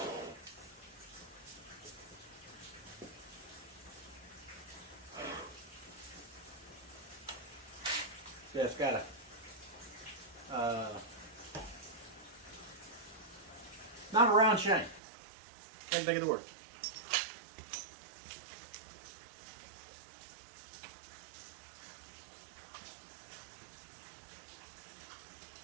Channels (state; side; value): drops out; left; at 15.0 s